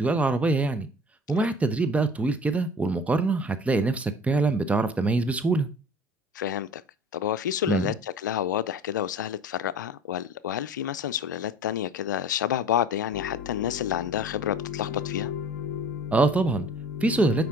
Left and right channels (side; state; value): both; normal; correlation 0.44